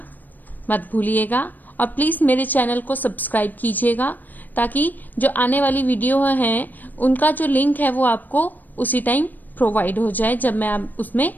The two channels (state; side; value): late; right; 0.086 ms